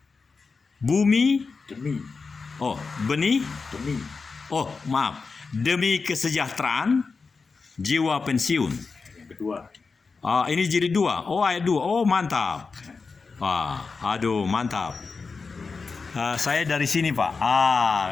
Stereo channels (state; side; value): quieter; right; 4.6 dB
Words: Bumi, benih, demi kesejahteraan, jiwa pensiun. Yang kedua. Ini jilid 2. Ayat 2. Mantap. Mantap. Saya dari sini Pak.